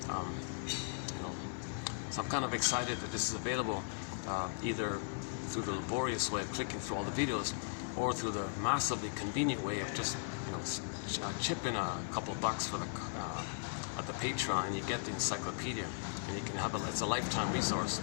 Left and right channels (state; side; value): silent; right; 53 dB below the other